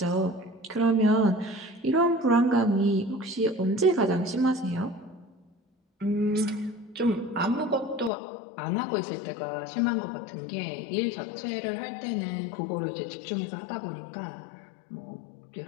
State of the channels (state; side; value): drops out; right; at 8.1 s